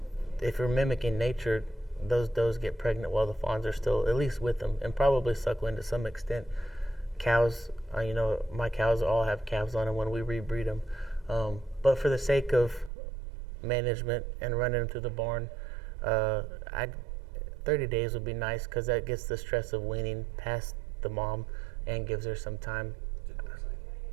if you're mimicking nature, those does get pregnant while the fawns are still at least with them, and probably suckling to some extent. Cows, my cows all have calves on them when we rebreed them. But for the sake of management and running them through the barn, 30 days would be nice because that gets the stress of weaning past the mom and gives her some time.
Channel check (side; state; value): left; drops out; at 12.9 s